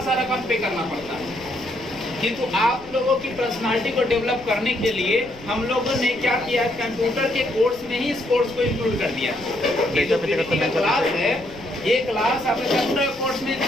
रकम पे करना पड़ता है, किंतु आप लोगों की पर्सनालिटी को डेवलप करने के लिए हम लोगों ने क्या किया, कंप्यूटर के कोर्स में ही इस कोर्स को इंक्लूड कर दिया। ये जो पीडीपी का क्लास है, ये क्लास आपके कंप्यूटर कोर्स में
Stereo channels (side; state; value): left; noise; rumble, 21 dB below the sound